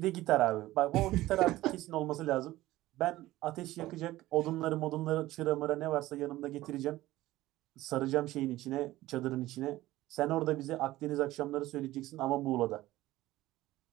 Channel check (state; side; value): quieter; left; 16.7 dB